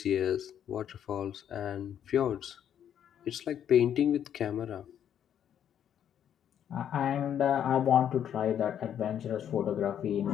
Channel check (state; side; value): quieter; right; 9.5 dB